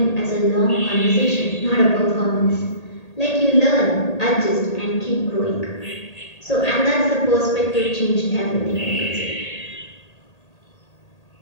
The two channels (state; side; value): late; right; 1.8 ms